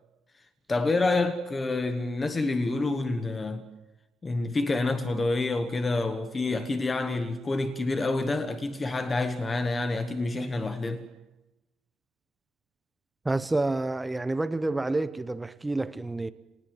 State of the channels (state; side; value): normal; both; correlation 0.91